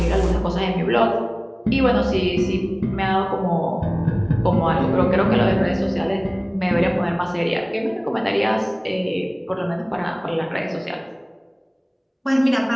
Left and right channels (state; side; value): identical; both; correlation 1.00